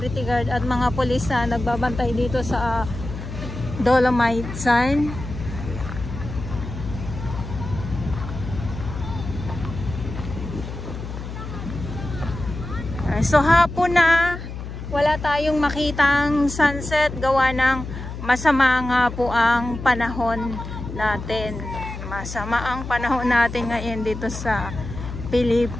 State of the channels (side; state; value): left; noise; hum, 9 dB below the sound